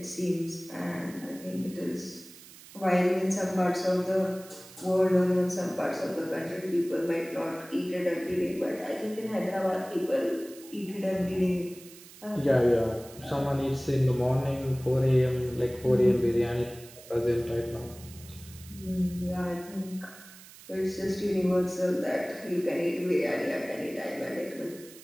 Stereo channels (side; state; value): right; noise; hiss, 19 dB below the sound